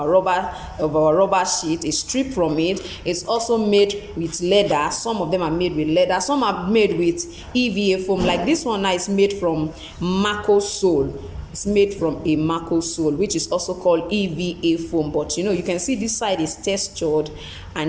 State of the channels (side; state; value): both; identical; correlation 1.00